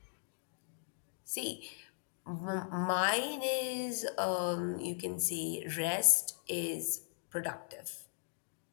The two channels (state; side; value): silent; right; digital silence